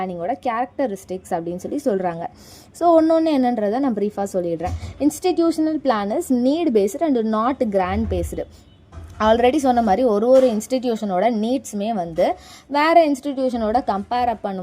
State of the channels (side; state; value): both; identical; correlation 1.00